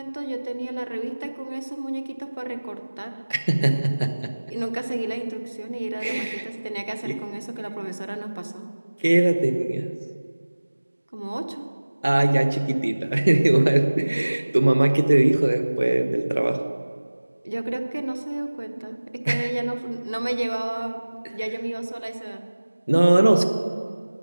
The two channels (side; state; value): both; inverted; correlation -1.00